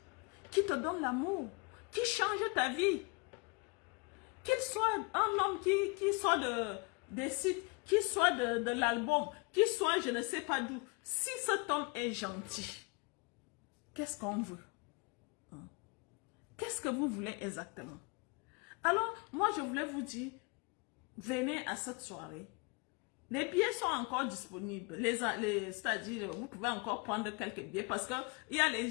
qui te donne l'amour, qui change ta vie. Qu'il soit un homme qui soit des sites, qui soit de l'album, qui soit je ne sais pas d'où. Si cet homme est gentil, qu'est-ce qu'on veut? Qu'est-ce que vous voulez exactement? Alors, moi, je voulais vous dire, venez à cette soirée. Les billets sont encore disponibles. C'est-à-dire, vous pouvez encore prendre quelques billets parce qu'il y a les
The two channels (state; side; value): quieter; right; 30.6 dB